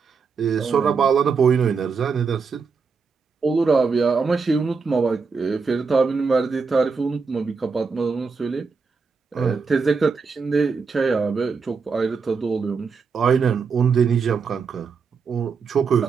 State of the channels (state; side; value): quieter; left; 5.2 dB